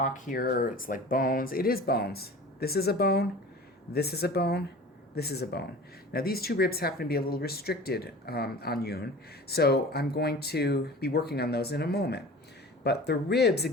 here, or it's like bones, it is bones. This is a bone. This is a bone. This is a bone. Now these two ribs happen to be a little restricted on Yoon, so I'm going to be working on those in a moment. But the ribs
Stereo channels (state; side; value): normal; both; correlation 0.39